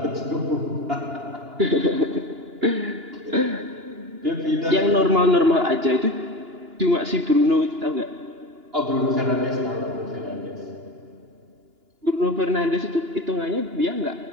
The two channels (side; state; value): left; late; 2.9 ms